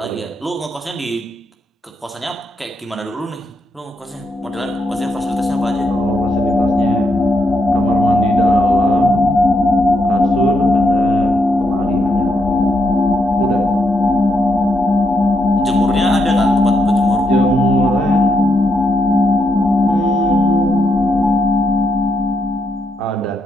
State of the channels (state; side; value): normal; both; correlation 0.80